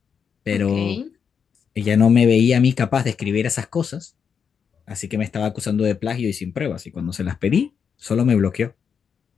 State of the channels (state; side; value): quieter; right; 6.8 dB